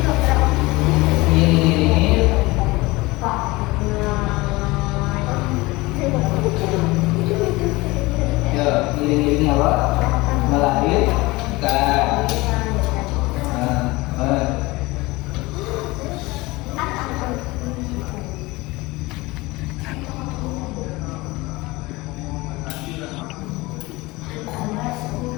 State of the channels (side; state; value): right; quieter; 21.8 dB